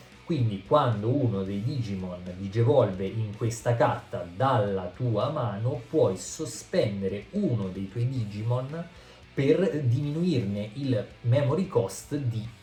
Quindi quando uno dei Digimon digevolve in questa carta dalla tua mano, puoi sospendere uno dei tuoi Digimon per diminuirne il memory cost di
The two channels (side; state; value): both; identical; correlation 1.00